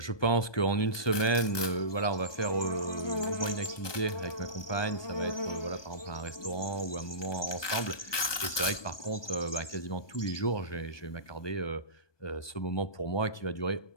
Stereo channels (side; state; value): right; late; 1.2 ms